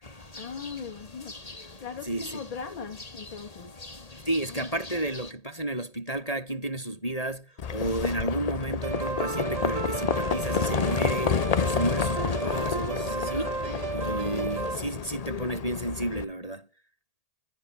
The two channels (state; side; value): late; right; 1.8 ms